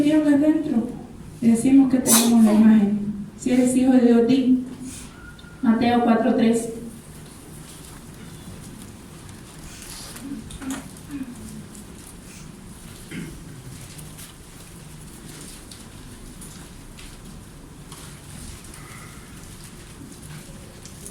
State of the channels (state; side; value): identical; both; correlation 1.00